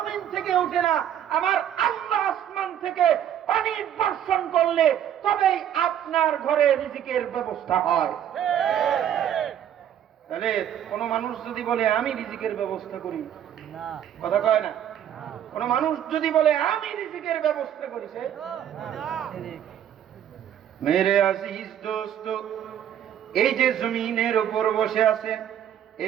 থেকে উঠে না, আমার আল্লাহ আসমান থেকে পানি বর্ষণ করলে তবেই আপনার ঘরে রিজিকের ব্যবস্থা হয়। তাহলে কোন মানুষ যদি বলে আমি রিজিকের ব্যবস্থা করি, কথা কয় না। কোন মানুষ যদি বলে আমি রিজিকের ব্যবস্থা করি, সে মেরে আজিজ দোস্ত, এই যে জমিনের উপর বসে আছেন,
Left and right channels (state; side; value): quieter; left; 10.2 dB